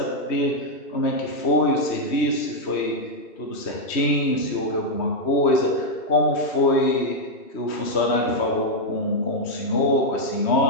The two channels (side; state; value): right; late; 3.1 ms